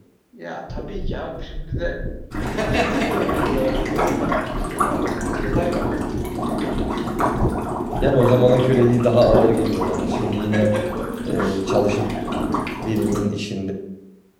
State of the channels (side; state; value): both; identical; correlation 1.00